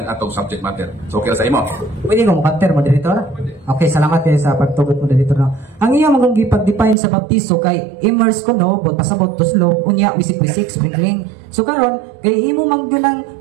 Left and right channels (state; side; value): drops out; left; at 7.0 s